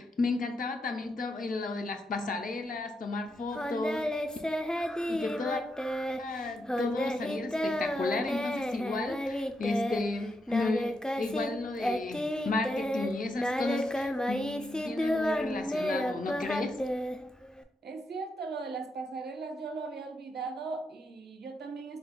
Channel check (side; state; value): both; normal; correlation 0.82